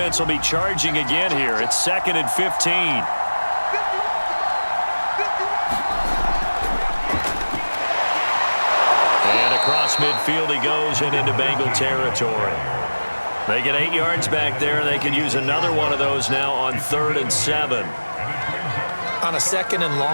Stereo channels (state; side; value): inverted; both; correlation -1.00